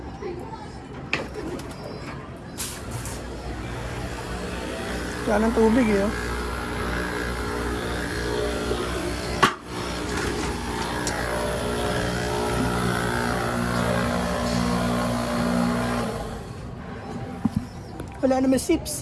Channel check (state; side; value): identical; both; correlation 1.00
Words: Wala ng tubig eh oh. Wala naman